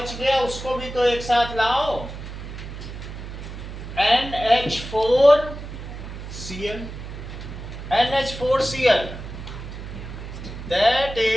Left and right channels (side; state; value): right; noise; hum, 10 dB below the sound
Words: गया उसको भी तो एक साथ लाओ, NH4Cl, NH4Cl, that